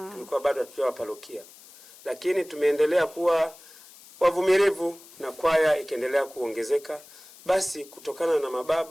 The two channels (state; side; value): noise; left; hiss, 22 dB below the sound